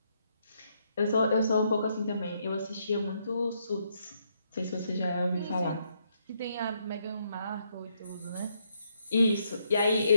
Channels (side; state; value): both; inverted; correlation -0.75